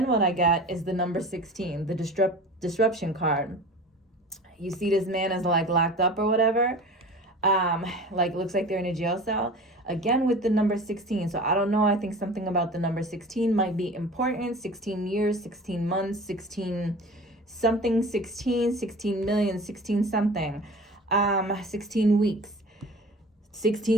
what I got is the number 16, the disruption card. You see this man is like locked up or whatever. Like, looks like they're in a jail cell. Again, with the number 16. So I don't know. I think something about the number 16 might be important. 16 years, 16 months, 16 something, 16 million, 16 something, 16 weeks.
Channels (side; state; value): both; normal; correlation 0.38